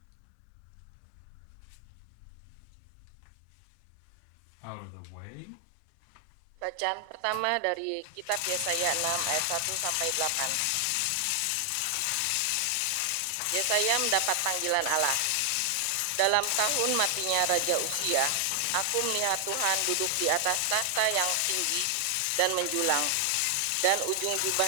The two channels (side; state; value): both; different; correlation 0.00